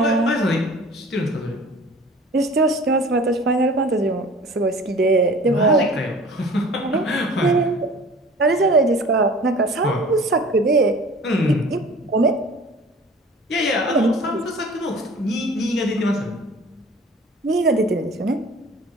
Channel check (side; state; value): both; normal; correlation 0.45